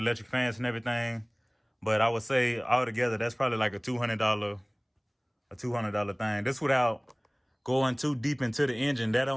fans and everything. But I would say altogether, that's probably like a $200 thing. This without going too deep into the engine. That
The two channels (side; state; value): both; identical; correlation 1.00